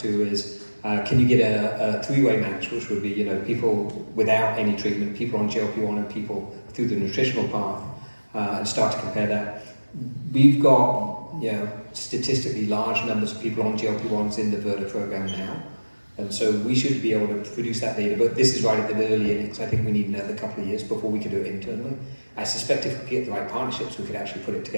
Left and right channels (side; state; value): both; inverted; correlation -1.00